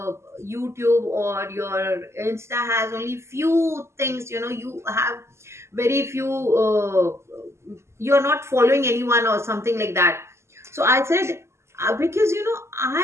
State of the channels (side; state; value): left; late; 0.13 ms